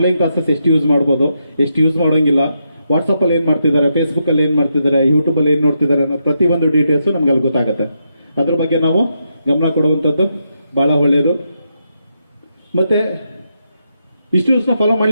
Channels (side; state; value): both; inverted; correlation -0.82